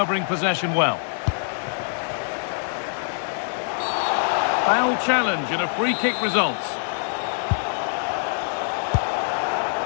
possession well. Foul challenge and a free kick results.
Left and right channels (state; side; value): silent; right; 63 dB below the other